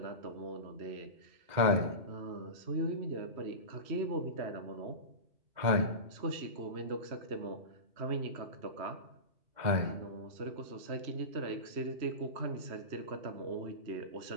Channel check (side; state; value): left; late; 2.1 ms